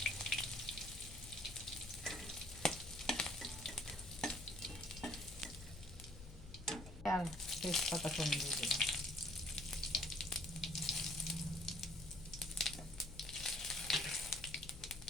আর তেজপাতা কম দিয়ে দিলাম।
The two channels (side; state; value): left; noise; hum, 14 dB below the sound